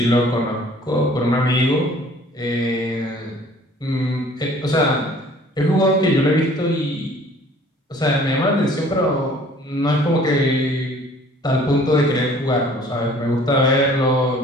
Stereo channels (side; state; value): both; normal; correlation 0.53